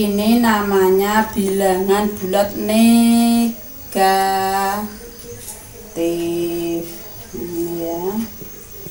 namanya bilangan bulat negatif ya.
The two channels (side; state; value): both; identical; correlation 1.00